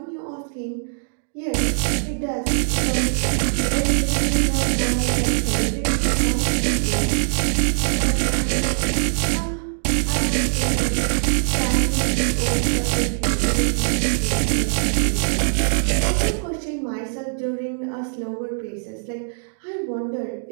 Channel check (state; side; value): silent; left; digital silence